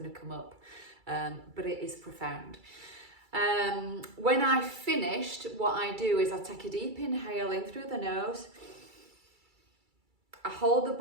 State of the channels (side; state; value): left; late; 2.3 ms